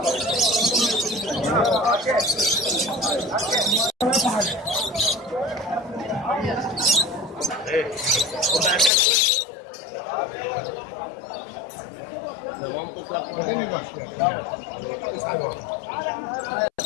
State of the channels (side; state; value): right; drops out; at 8.9 s